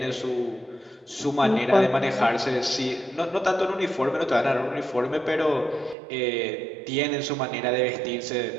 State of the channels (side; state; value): left; drops out; at 6.0 s